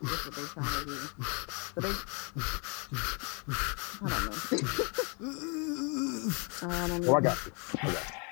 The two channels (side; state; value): right; quieter; 35.0 dB